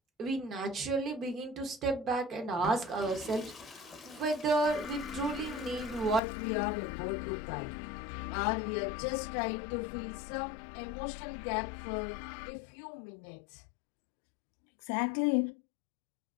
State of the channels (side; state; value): right; drops out; at 6.2 s